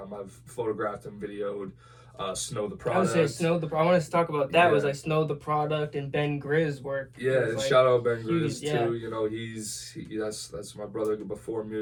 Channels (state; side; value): identical; both; correlation 1.00